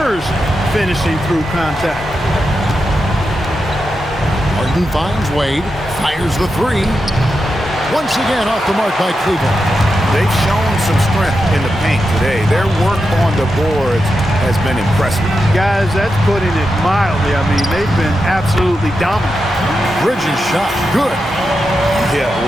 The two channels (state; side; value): normal; both; correlation 0.88